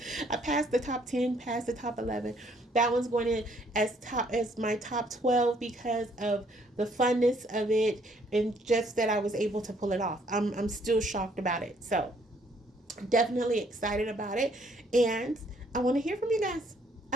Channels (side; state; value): both; normal; correlation 0.66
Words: I passed the top 10, passed the top 11. That one's going in as my top 12 because of the funness of it and just that I was able to pull it off. I'm still shocked about it. So definitely excited about it, and I want to hear from you guys.